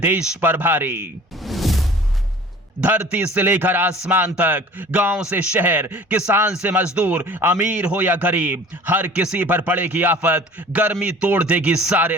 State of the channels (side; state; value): both; normal; correlation 0.46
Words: पर भारी। धरती से लेकर आसमान तक, गांव से शहर, किसान से मजदूर, अमीर हो या गरीब, हर किसी पर पड़ेगी आफत, गर्मी तोड़ देगी